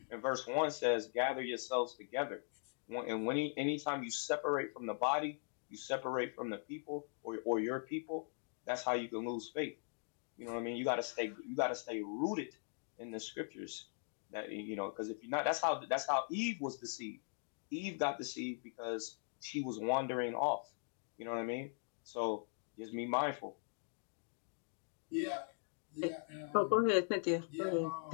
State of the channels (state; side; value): silent; right; 51 dB below the other